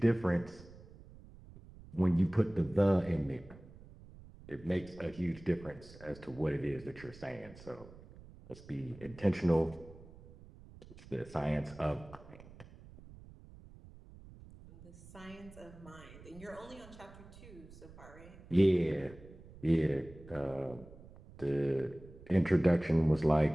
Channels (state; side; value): noise; right; rumble, 19 dB below the sound